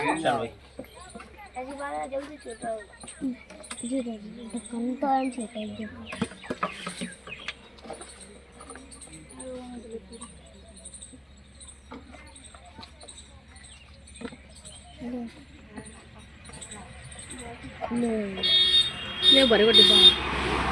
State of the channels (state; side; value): identical; both; correlation 1.00